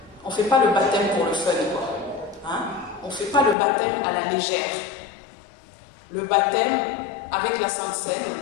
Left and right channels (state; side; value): drops out; right; at 3.6 s